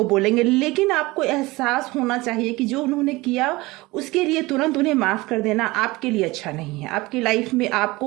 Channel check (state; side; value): quieter; left; 21.3 dB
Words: बोलेंगे। लेकिन आपको एहसास होना चाहिए कि जो उन्होंने किया उसके लिए तुरंत उन्हें माफ कर देना आपके लिए अच्छा नहीं है। आपकी लाइफ में